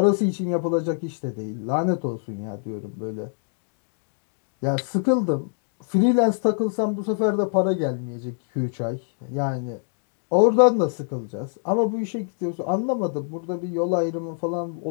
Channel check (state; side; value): silent; right; 62 dB below the other